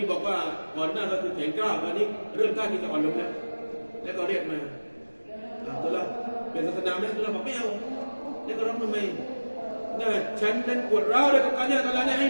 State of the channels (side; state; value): both; inverted; correlation -1.00